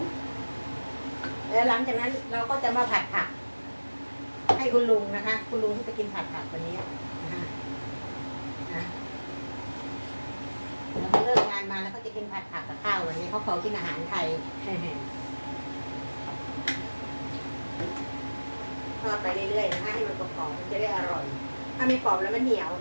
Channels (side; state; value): both; inverted; correlation -1.00